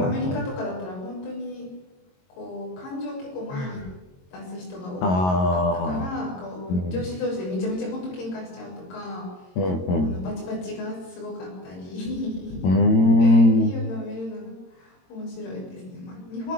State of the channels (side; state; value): right; late; 22 ms